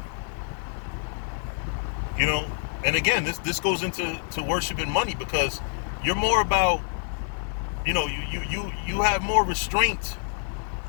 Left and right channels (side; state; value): right; silent; 60 dB below the other